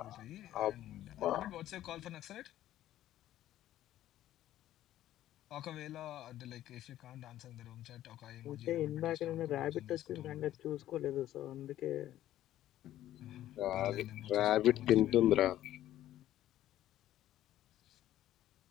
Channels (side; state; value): right; quieter; 13.2 dB